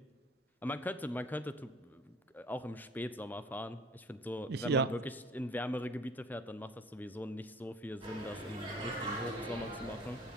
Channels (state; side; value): normal; both; correlation 0.50